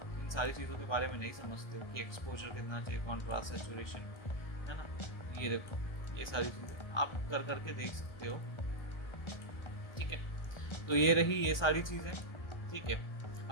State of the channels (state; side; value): late; right; 1.2 ms